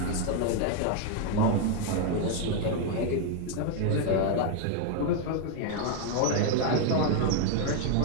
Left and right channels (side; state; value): both; different; correlation 0.01